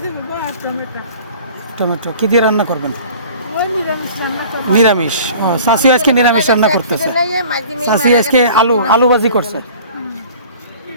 দেবো আর টমেটো টমেটো। কি দিয়ে রান্না করবেন? ওই নিরামিষ রান্না করবো নিরামিষ। চাষি আজকে নিরামিষ রান্না করতেছে। চাষি আজকে আলু ভাজি করছে।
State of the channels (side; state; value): both; inverted; correlation -0.46